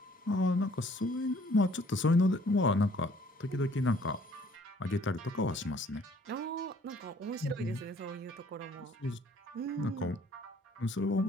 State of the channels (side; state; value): both; normal; correlation 0.59